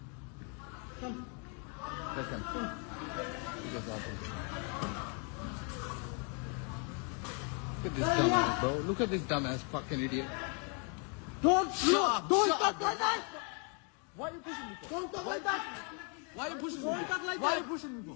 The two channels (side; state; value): right; quieter; 38.2 dB